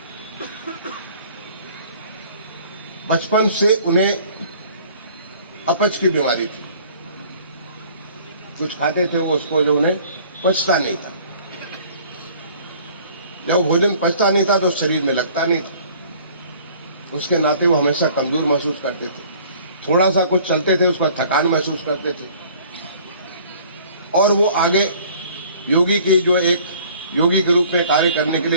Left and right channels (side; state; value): both; inverted; correlation -0.53